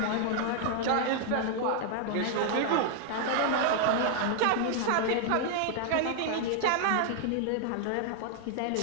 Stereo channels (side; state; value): both; different; correlation 0.00